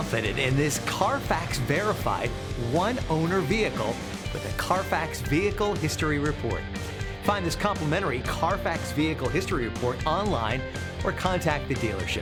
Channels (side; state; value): both; identical; correlation 1.00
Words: in this Carfax verified one-owner vehicle with a Carfax Vehicle History Report. Find this complimentary Carfax Vehicle History Report online or contact the